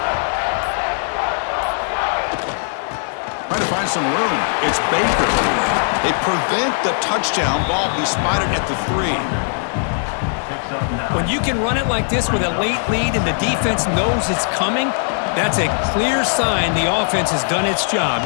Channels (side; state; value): right; silent; digital silence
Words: Trying to find some room. It's Baker. They prevent the touchdown ball. He spotted at the 3. When you can run it like this with a late lead and the defense knows it's coming, That's a clear sign the offense has done its job.